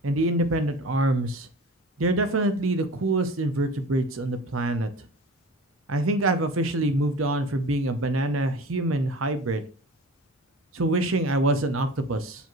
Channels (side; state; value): both; normal; correlation 0.38